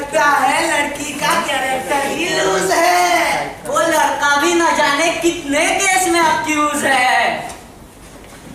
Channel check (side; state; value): both; identical; correlation 1.00